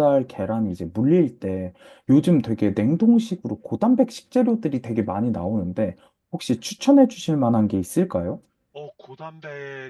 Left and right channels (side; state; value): both; identical; correlation 1.00